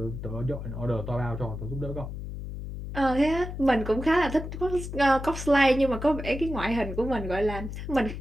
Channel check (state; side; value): noise; left; hum, 8 dB below the sound